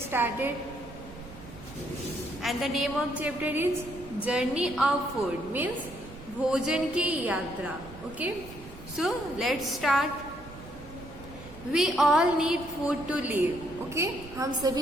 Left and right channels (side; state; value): right; noise; rumble, 16 dB below the sound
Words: started. And the name of chapter is Journey of Food, means भोजन की यात्रा. Okay? So, let's start. We all need food to live. Okay? हम